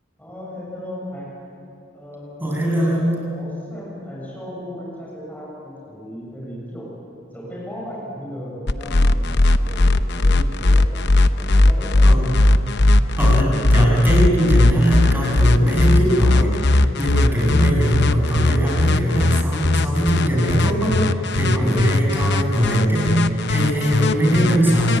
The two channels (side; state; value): both; normal; correlation 0.86